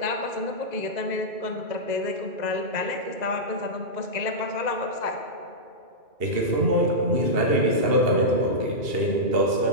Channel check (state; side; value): late; left; 2.7 ms